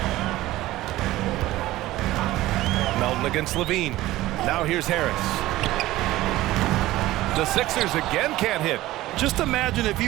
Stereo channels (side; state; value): left; quieter; 16.6 dB